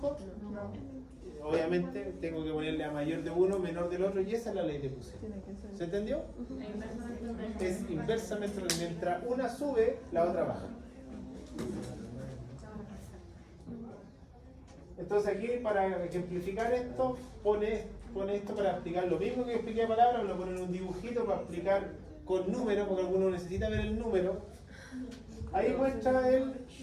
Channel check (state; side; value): identical; both; correlation 1.00